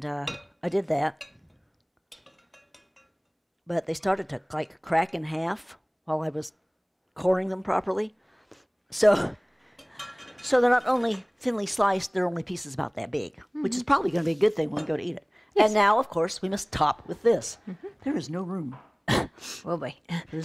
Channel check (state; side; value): identical; both; correlation 1.00